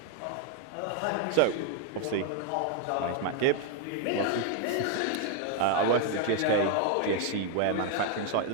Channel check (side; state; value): both; different; correlation 0.01